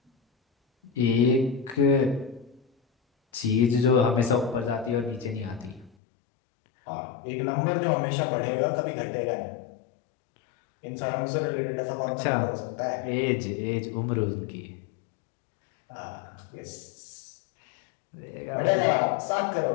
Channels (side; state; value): right; drops out; at 5.9 s